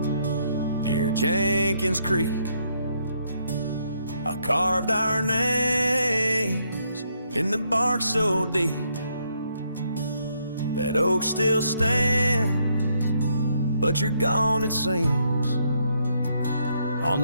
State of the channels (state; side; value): inverted; both; correlation -0.73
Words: near Jenkins Creek, I carved our names in the bark so deep. That oak still stands, but you're gone it seems, on